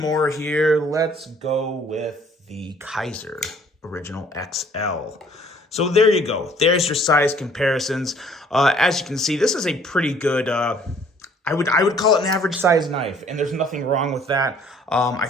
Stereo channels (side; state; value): both; normal; correlation 0.58